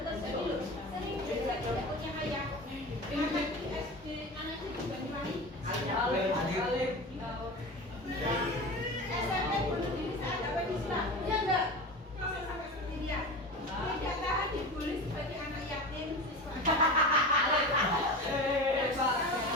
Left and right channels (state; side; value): normal; both; correlation 0.29